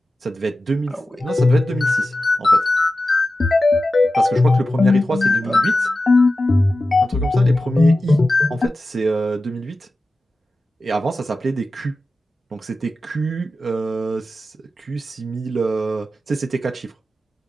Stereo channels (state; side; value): normal; both; correlation 0.93